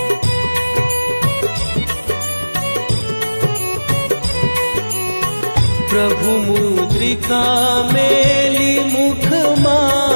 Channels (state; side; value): inverted; both; correlation -1.00